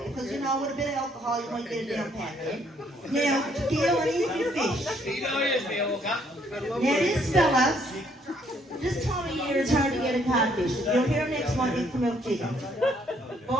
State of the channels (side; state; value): both; normal; correlation 0.67